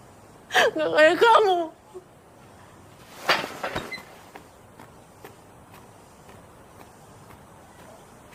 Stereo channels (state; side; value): identical; both; correlation 1.00